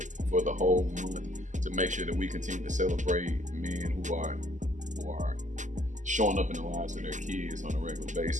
for the whole month to make sure that we continue to celebrate men who are showing up in the lives of their kids on a regular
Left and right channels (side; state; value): left; late; 0.36 ms